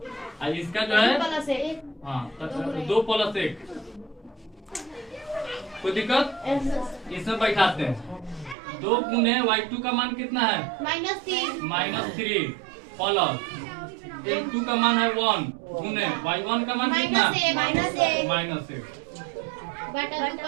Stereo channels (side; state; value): left; drops out; at 8.6 s